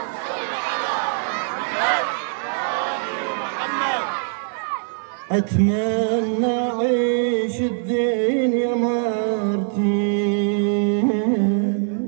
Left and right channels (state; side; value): silent; left; digital silence